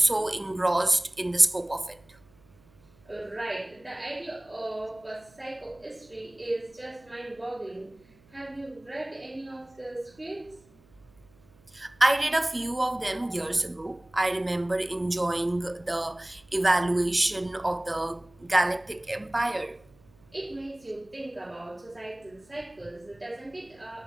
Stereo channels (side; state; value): right; noise; hum, 29 dB below the sound